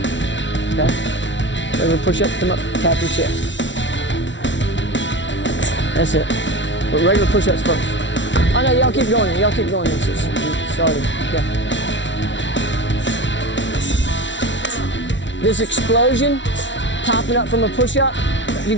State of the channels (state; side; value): late; right; 0.54 ms